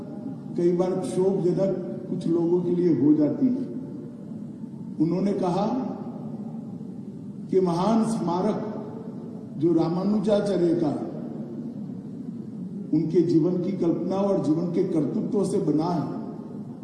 कई बार क्षोभजनक कुछ लोगों के लिए हो जाती है। उन्होंने कहा कि महान स्मारक जो रामानुजाचार्य का उनके जीवन की कल्पना और जीवन के कर्तृत्व से बना है,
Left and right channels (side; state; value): both; identical; correlation 1.00